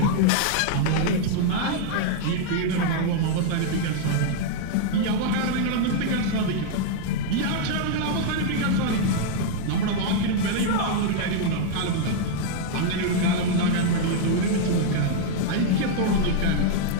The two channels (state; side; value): different; both; correlation -0.01